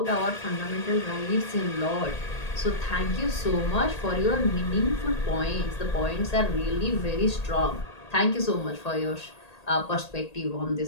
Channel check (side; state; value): right; late; 1.8 ms